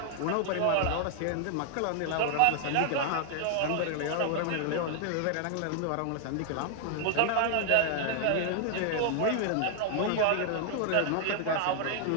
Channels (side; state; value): both; different; correlation 0.00